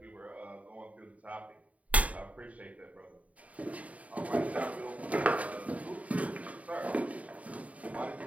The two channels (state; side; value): late; left; 0.068 ms